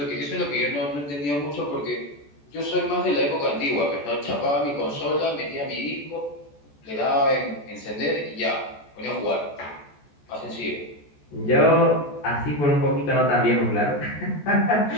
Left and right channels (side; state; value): right; late; 14 ms